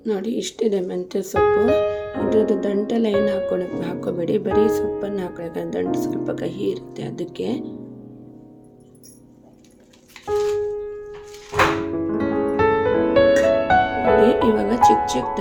ನೋಡಿ, ಇಷ್ಟಿದೆ ಮೆಂತ್ಯ ಸೊಪ್ಪು. ಇದ್ರದ್ದು ದಂಟೆಲ್ಲ ಏನು ಹಾಕ್ಕೋಬೇಡಿ, ಬರೀ ಸೊಪ್ಪನ್ನು ಹಾಕೊಳ್ಳಿ. ದಂಟು ಸ್ವಲ್ಪ ಕಹಿ ಇರುತ್ತೆ ಅದಕ್ಕೆ. ಇವಾಗ ಚಿಕ್ಕ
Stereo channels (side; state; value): both; identical; correlation 1.00